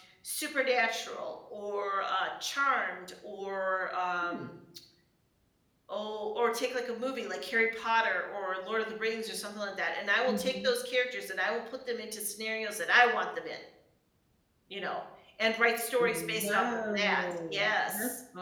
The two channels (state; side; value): identical; both; correlation 1.00